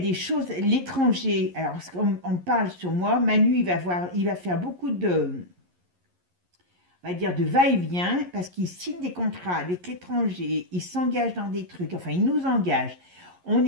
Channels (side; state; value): left; late; 11 ms